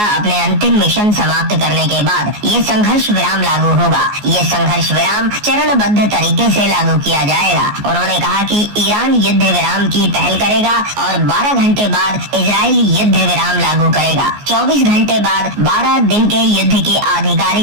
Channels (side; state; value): left; late; 14 ms